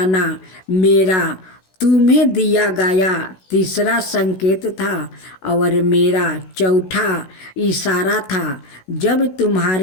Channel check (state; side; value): late; right; 16 ms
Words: मेरा तुम्हें दिया गया तीसरा संकेत था। और मेरा चौथा इशारा था जब